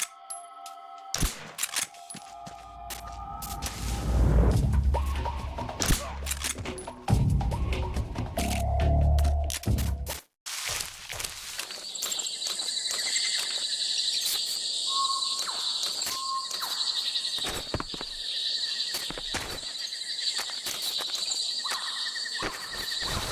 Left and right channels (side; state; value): both; identical; correlation 1.00